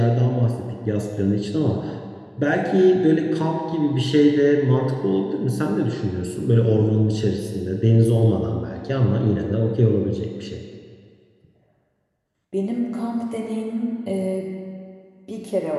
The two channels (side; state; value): both; identical; correlation 1.00